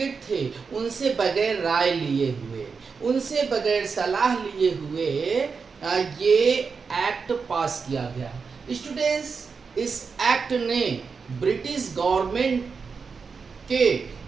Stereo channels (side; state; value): left; quieter; 5.3 dB